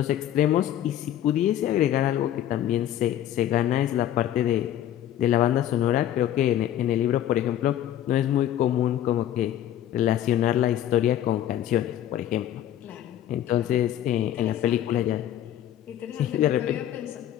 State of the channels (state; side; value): quieter; right; 11.7 dB